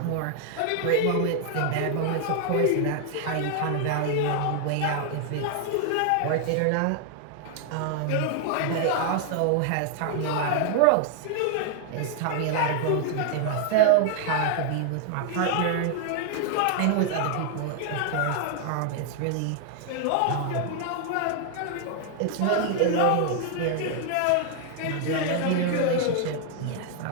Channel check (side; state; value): both; different; correlation 0.00